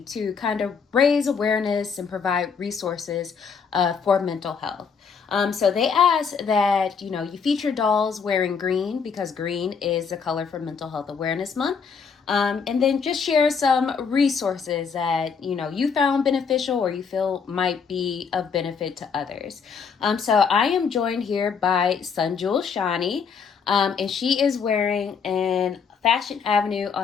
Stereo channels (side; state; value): right; quieter; 6.0 dB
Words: to kind of raise awareness and provide resources for mental health. So they asked that, you feature dolls wearing green because green is the color for Mental Health Awareness Month. And then just share some resources that you found beneficial or you feel might be of benefit to others. So I am joined here by Sunjul Shani, and she is wearing an Fashion Avenue